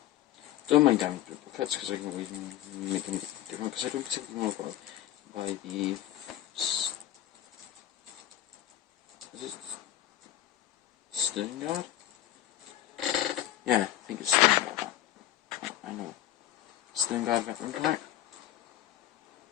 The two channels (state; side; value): quieter; right; 13.0 dB